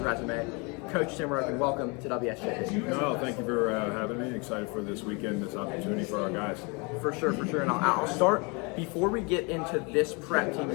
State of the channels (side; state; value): right; quieter; 30.7 dB